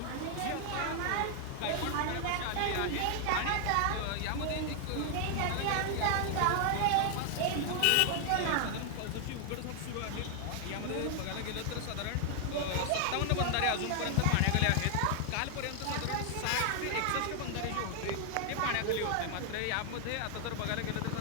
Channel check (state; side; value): different; both; correlation 0.00